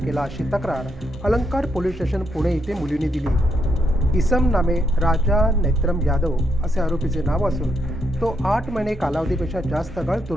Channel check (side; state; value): both; normal; correlation 0.78